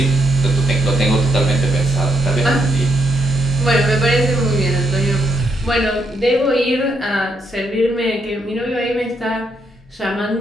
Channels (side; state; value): both; normal; correlation 0.74